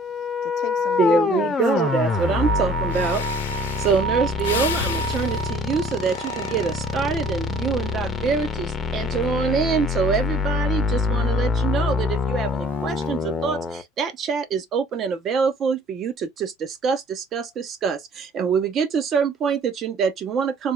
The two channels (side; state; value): both; normal; correlation 0.54